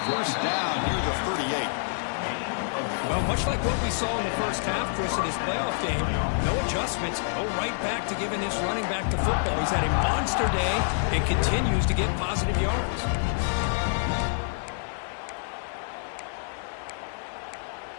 first down near the 38. Well, much like what we saw in the first half, Chris, in his playoff game, no adjustments, go right back to giving his running back to football. He's had a monster day and continues to get positive yards.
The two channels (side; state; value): right; silent; digital silence